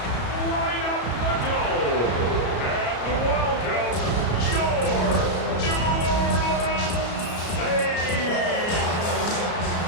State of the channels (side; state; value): right; late; 34 ms